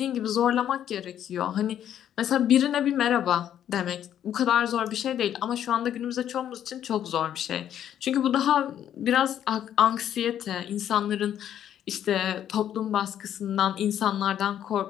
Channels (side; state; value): right; quieter; 10.4 dB